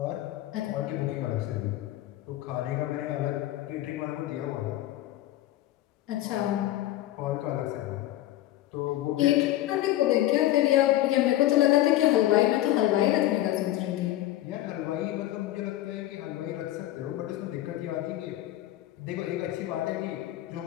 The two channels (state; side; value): quieter; right; 14.6 dB